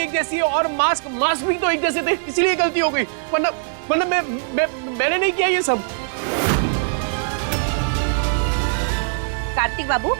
एक जैसी है और मास्क भी तो एक जैसे थे, इसीलिए गलती हो गई। वरना मैंने नहीं किया ये सब। कार्तिक बाबू,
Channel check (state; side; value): silent; left; digital silence